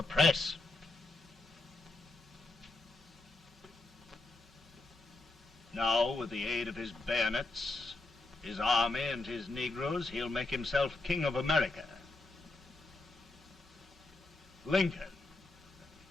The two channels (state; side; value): quieter; right; 3.1 dB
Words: press. Now, with the aid of his bayonets, his army, and his Negroes, he'll make himself king of America. Lincoln.